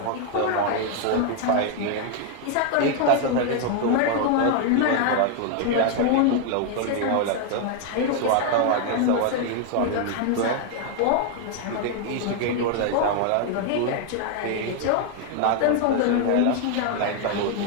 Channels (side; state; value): both; different; correlation 0.00